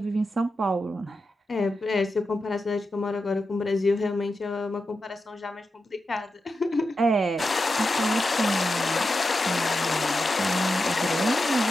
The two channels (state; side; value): normal; both; correlation 0.89